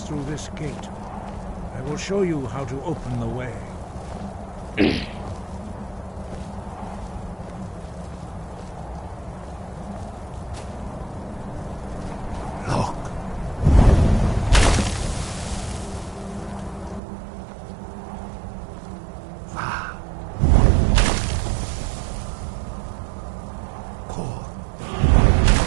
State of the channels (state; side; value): drops out; left; at 17.0 s